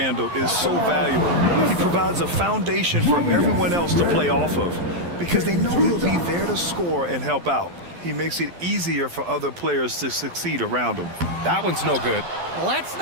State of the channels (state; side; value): late; left; 12 ms